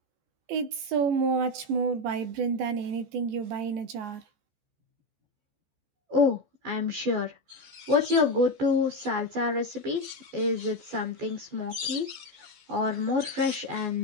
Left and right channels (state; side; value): late; left; 14 ms